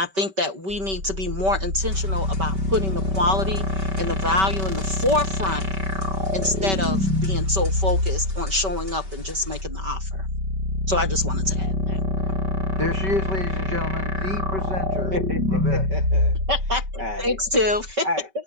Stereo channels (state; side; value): late; left; 5.2 ms